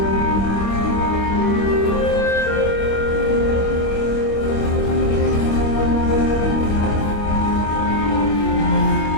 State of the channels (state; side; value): late; right; 25 ms